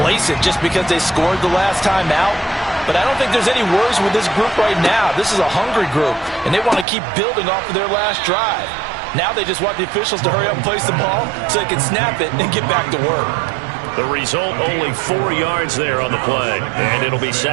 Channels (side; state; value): left; drops out; at 6.9 s